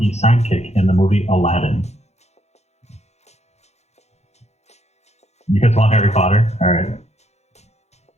sidekick in the movie Aladdin. You guys want Harry Potter? All right.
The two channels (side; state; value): right; late; 0.32 ms